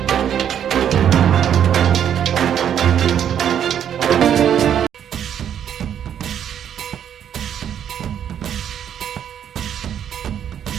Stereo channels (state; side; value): quieter; left; 9.4 dB